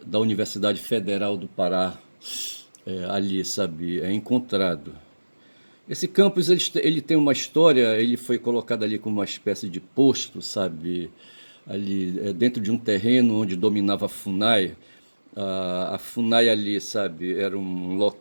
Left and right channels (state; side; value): inverted; both; correlation -1.00